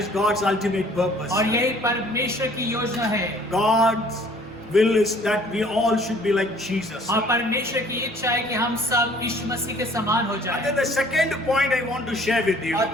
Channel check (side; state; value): both; normal; correlation 0.55